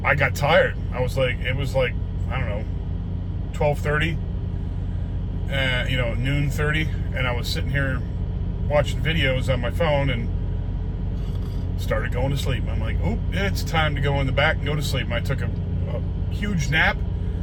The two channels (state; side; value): identical; both; correlation 1.00